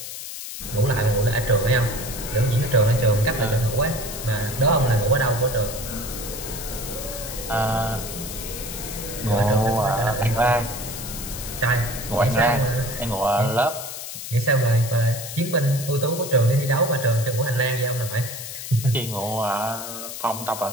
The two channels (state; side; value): noise; left; hiss, 9 dB below the sound